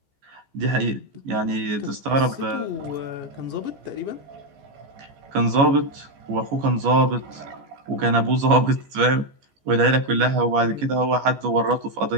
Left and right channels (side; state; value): left; late; 14 ms